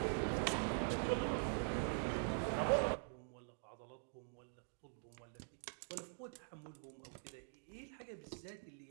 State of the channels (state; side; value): silent; left; digital silence